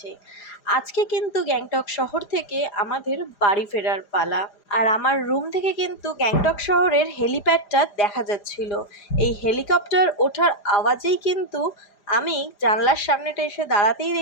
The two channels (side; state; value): right; late; 5.0 ms